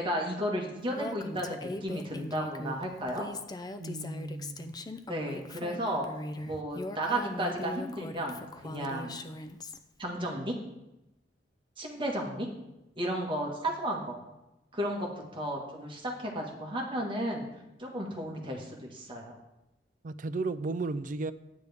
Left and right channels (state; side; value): normal; both; correlation 0.48